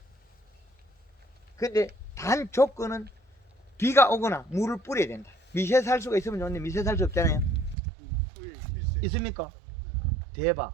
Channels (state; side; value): drops out; left; at 7.8 s